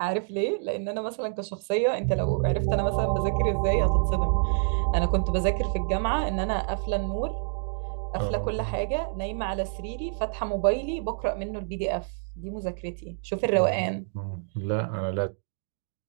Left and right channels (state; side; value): silent; left; digital silence